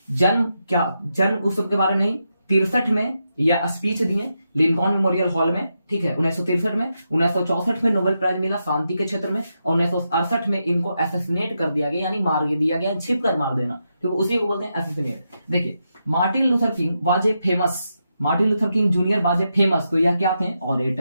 जन्म उत्सव के बारे में नहीं, 63 में यह स्पीच दिए लिंकॉन मेमोरियल हॉल में, ठीक है, 1963 में। 1964 में नोबेल प्राइज मिला शांति के क्षेत्र में। और 1968 में इनको एसेसिनेट कर दिया गया, यानी मार दिया गया, छिप कर मार देना, तो उसी को बोलते हैं एसेसिनेट। देखिए, Martin Luther king was a famous, Martin Luther King junior was a famous, तो यह क्या थे?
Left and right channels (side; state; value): both; inverted; correlation -0.85